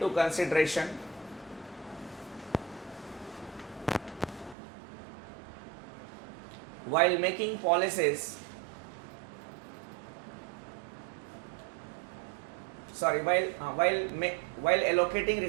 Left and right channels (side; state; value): left; drops out; at 4.5 s